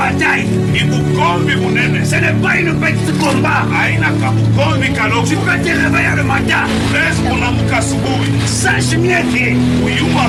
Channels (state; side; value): identical; both; correlation 1.00